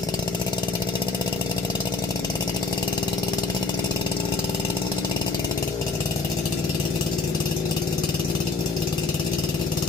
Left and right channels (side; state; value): right; quieter; 3.8 dB